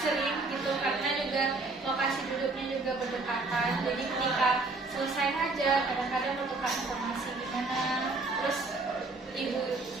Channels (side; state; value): left; quieter; 3.5 dB